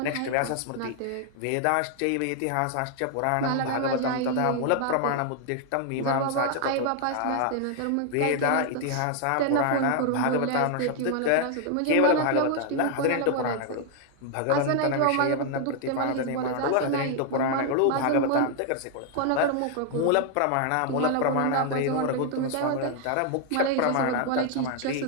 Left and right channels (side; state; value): both; different; correlation 0.00